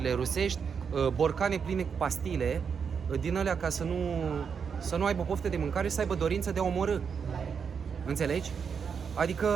rusești borcane pline cu pastile din alea ca să nu aibă poftă de mâncare și să aibă dorință de a omorâ. Înțelegi?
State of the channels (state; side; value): quieter; left; 6.5 dB